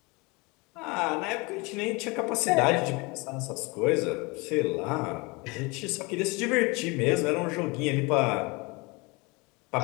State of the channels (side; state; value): right; quieter; 26.8 dB